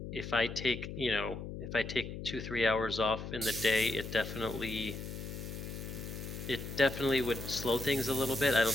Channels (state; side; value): noise; left; hum, 8 dB below the sound